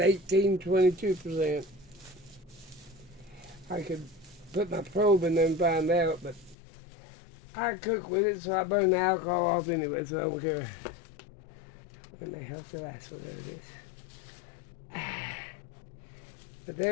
22%. I could put my probe in there and find out, but I cook with it, so I burn the alcohol off anyway, so I don't care. When the hell's the last one? There it is. But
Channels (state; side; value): drops out; right; at 6.6 s